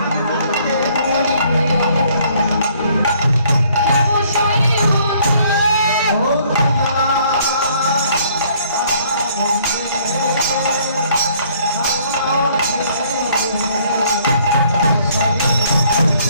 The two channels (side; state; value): both; inverted; correlation -0.61